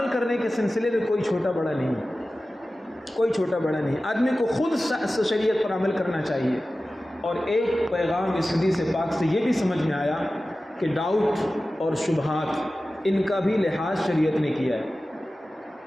کرنے کے سلسلے میں کوئی چھوٹا بڑا نہیں، کوئی چھوٹا بڑا نہیں، آدمی کو خود شریعت پر عمل کرنا چاہیے۔ اور ایک پیغام اس حدیث پاک سے یہ بھی سمجھ میں آیا کہ ڈاؤٹ اور شبہات ان کا بھی لحاظ شریعت نے کیا ہے۔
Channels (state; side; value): normal; both; correlation 0.95